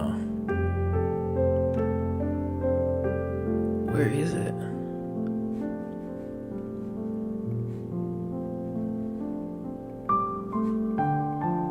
Where is it?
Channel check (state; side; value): identical; both; correlation 1.00